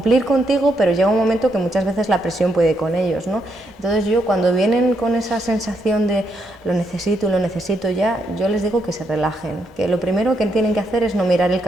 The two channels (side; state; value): both; normal; correlation 0.78